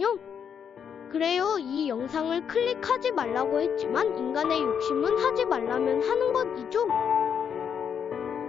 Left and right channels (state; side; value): quieter; right; 7.6 dB